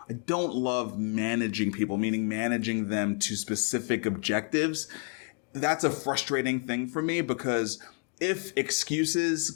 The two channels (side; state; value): right; quieter; 39.9 dB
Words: I don't love managing people, meaning managing them to specific objectives. That's a frustrating thing for me because if excuses